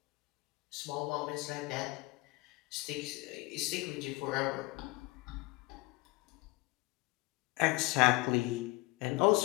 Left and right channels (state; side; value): quieter; right; 22.9 dB